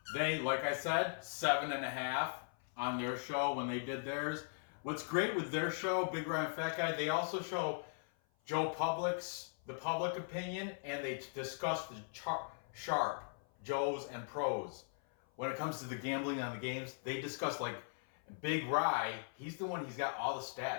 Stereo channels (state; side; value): silent; right; 52 dB below the other